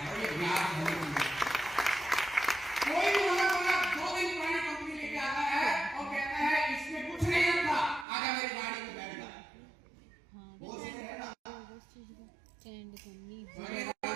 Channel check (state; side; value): drops out; left; at 8.1 s